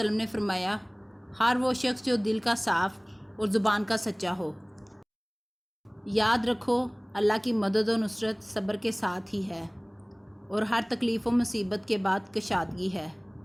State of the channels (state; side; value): identical; both; correlation 1.00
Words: نے فرمایا ہر وہ شخص جو دل کا صاف اور زبان کا سچا ہو۔ یاد رکھو اللہ کی مدد و نصرت صبر کے ساتھ ہی ہے، اور ہر تکلیف و مصیبت کے بعد کشادگی ہے،